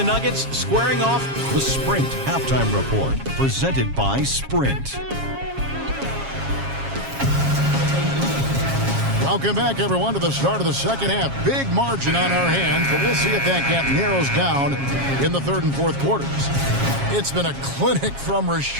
Nuggets, squaring off The Sprint Halftime Report, presented by Sprint. Welcome back, everyone, to the start of the second half. Big margin on our hands, but we'll see if that gap narrows down in the third and fourth quarters. It's been a clinic from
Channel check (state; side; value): late; left; 7.3 ms